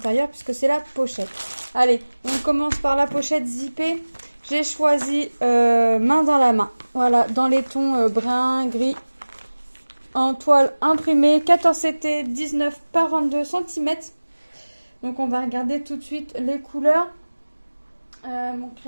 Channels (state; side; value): inverted; both; correlation -1.00